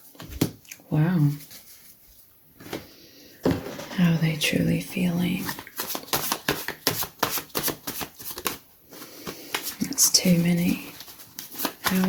Wow. How are they truly feeling? That's too many. How are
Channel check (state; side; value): identical; both; correlation 1.00